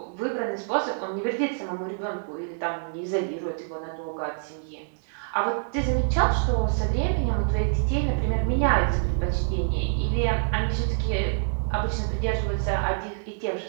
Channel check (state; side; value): silent; left; digital silence